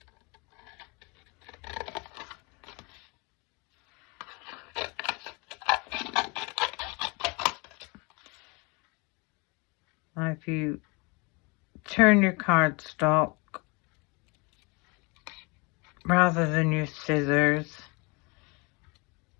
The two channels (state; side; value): quieter; right; 29.2 dB